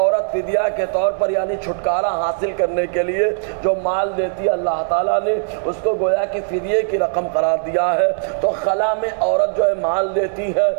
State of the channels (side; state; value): left; silent; digital silence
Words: فدیہ کے طور پر یعنی چھٹکارا حاصل کرنے کے لیے جو مال دیتی ہے اللہ تعالیٰ نے اس کو گویا کہ فدیے کی رقم قرار دیا ہے۔ تو خلا میں عورت جو ہے مال دیتی ہے